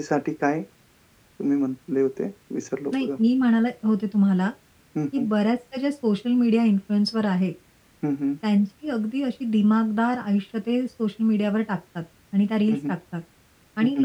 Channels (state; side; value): identical; both; correlation 1.00